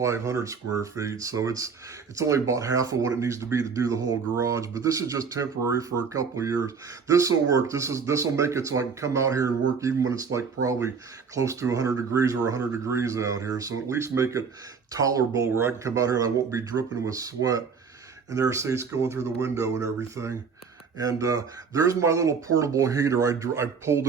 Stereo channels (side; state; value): left; quieter; 5.7 dB